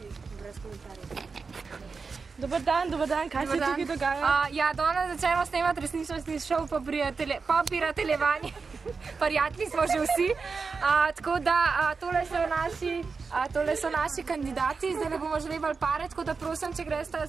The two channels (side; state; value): left; quieter; 4.8 dB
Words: Brez komentarjev. Dobar dan, kaj se tukaj dogaja? Ja, danes začnemo snemati resničnostni šov po prijateljevanju. Prijatelji smo že vsi. Tako da tole so naši kandidati, zdaj ne bomo želeli pare, tako da prosim, če greste